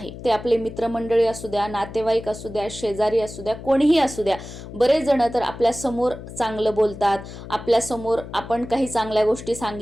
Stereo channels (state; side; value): noise; left; hum, 13 dB below the sound